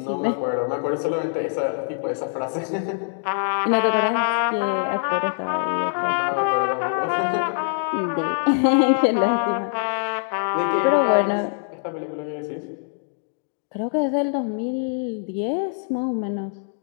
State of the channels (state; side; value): silent; right; digital silence